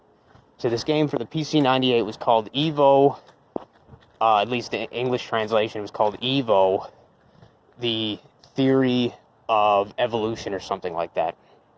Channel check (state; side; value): identical; both; correlation 1.00